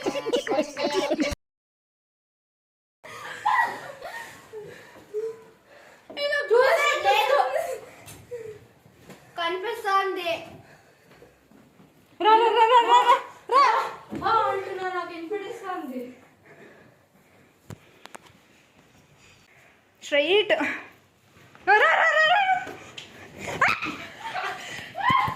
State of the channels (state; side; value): identical; both; correlation 1.00